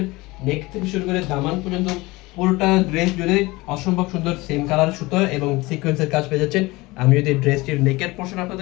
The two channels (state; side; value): quieter; right; 21.8 dB